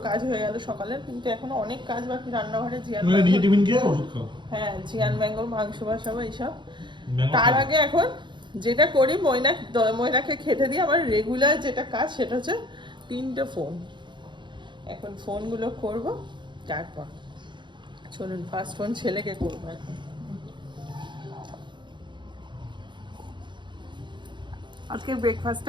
কাজ হয়ে গেল সকালের, কিন্তু এখনো অনেক কাজ বাকি রান্নাঘরে। হ্যাঁ, জিয়ান ম্যাঙ্গোর মাংস বসাবো এইসব। তার আগে এখন যেটা করি, মৈনাককে খেতে দিয়ে আমার রেগুলার যেটা কাজ সেটা হচ্ছে 3টে ফোন। এখন ফোনগুলো করব, তারপর চলুন ফার্স্ট ফোন ছেলেকে করবো এখন। আজকে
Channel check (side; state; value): left; late; 0.23 ms